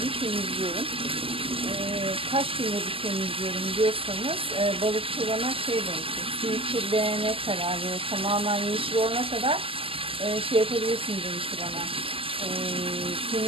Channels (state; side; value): late; left; 0.26 ms